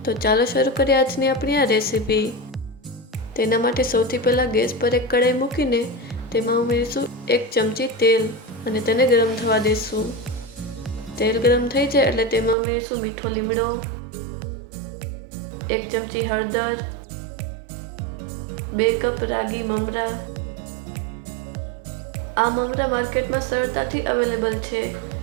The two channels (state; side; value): drops out; left; at 12.6 s